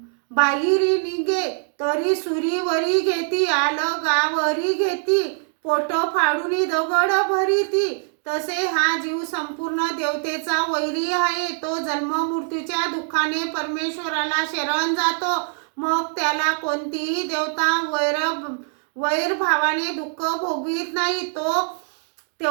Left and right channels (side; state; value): left; silent; 58 dB below the other